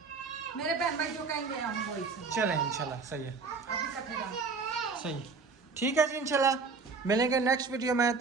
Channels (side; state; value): left; quieter; 4.6 dB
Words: मेरे बहन भाई जो कहेंगे हम वही चले इंशाल्लाह सही है, अभी कटेगा सही ठीक है जी। इंशाल्लाह मिलेंगे नेक्स्ट वीडियो में,